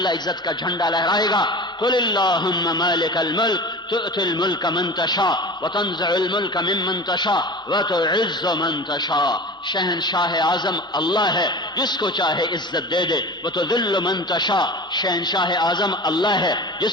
عزت کا جھنڈا لہرائے گا۔ قل اللہم مالک الملک تؤتی الملک من تشاء وتنزع الملک ممن تشاء وتعز من تشاء. شہنشاہ اعظم اللہ ہے، جس کو چاہے عزت دے دے. وتذل من تشاء، شہنشاہ اعظم اللہ ہے،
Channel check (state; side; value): normal; both; correlation 0.35